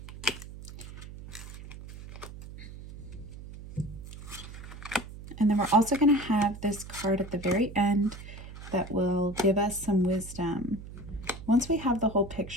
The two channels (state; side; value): noise; right; hum, 13 dB below the sound